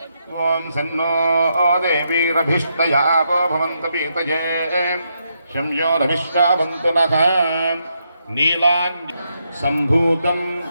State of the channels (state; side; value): inverted; both; correlation -0.80